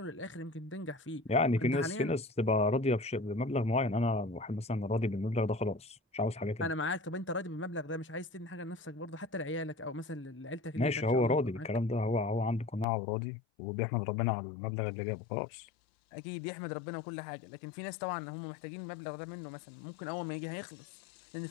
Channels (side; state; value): right; drops out; at 12.9 s